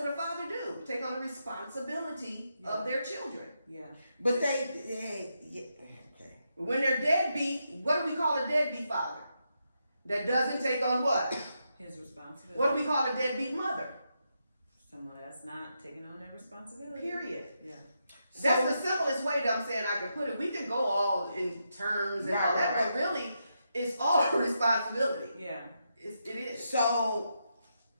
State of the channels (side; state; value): both; inverted; correlation -0.83